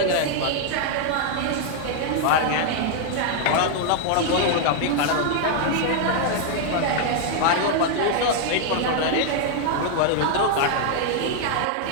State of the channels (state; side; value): different; both; correlation 0.00